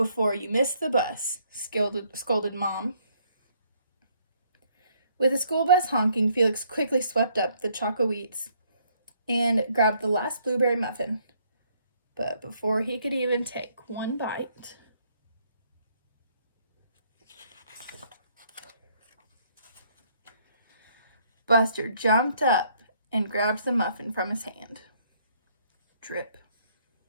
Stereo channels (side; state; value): both; inverted; correlation -0.67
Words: you miss the bus," scolded Mom. With the school bus honking, Felix quickly swept up the choco wheats and grabbed the last blueberry muffin. But before he could even take one bite, Buster jumped up and grabbed the muffin from his hand. Drip.